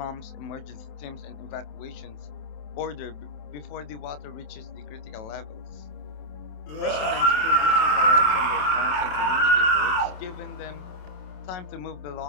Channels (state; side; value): late; right; 26 ms